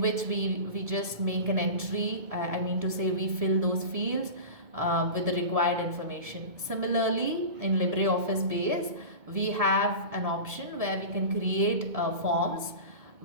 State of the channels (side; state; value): left; late; 2.2 ms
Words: we just make an entry. I mean to say we fill those fields with the required information. Similarly, in LibreOffice base, we have an option where we can create forms,